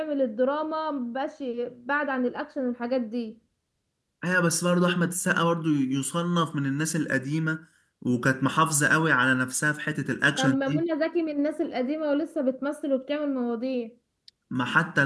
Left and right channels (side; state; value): both; identical; correlation 1.00